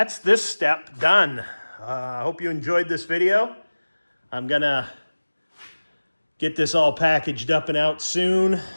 this step done. I hope you enjoyed this video. I'm going to get this all packaged up and out soon.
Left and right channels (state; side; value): inverted; both; correlation -1.00